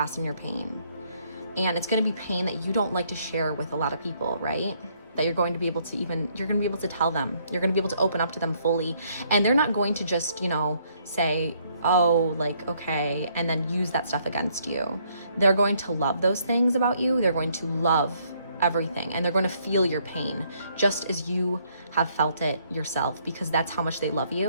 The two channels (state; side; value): inverted; both; correlation -0.68